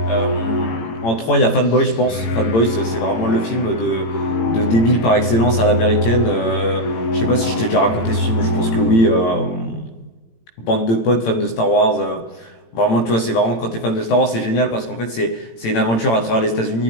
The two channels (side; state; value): right; late; 18 ms